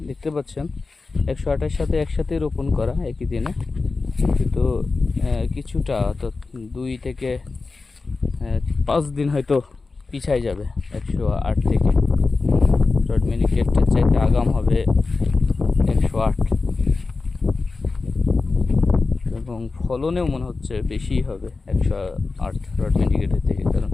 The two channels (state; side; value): quieter; right; 4.0 dB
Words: দেখতে পাচ্ছেন 128 সাথে একসাথে রোপণ করা একই দিনে, কিন্তু কিছুটা তো 2 থেকে 5 দিন হয়তো পিছাই যাবে 108 থেকে। রড মিনিকেটের চাইতে আগাম হবে 108, এবং ফলনেও মনে হচ্ছে বেশি হবে 108 রড মিনিকেটের থেকে, কারণ